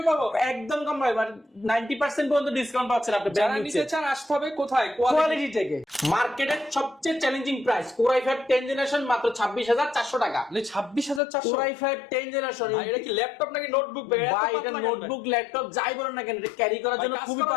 পাবো, একদম কম ভাই, 90% পর্যন্ত ডিসকাউন্ট পাচ্ছেন আপনি। যারা নিতে চান আসতে হবে কোথায়? কোয়ালিটি থেকে। মার্কেটের সবচেয়ে challenging price Core i5 10 generation মাত্র 26,400 টাকা। 26,400 Core i5 10 জেনারেশন। ভাই এটা কি ল্যাপটপ নাকি নোটবুক? ভাই এত ভাই এটা পাতলা কেন? নোটবুক ল্যাপটপ যাই বলেন না কেন, এটা ক্যারি করার ভাই, জন্য কাজ খুবই করার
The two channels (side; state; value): right; drops out; at 11.2 s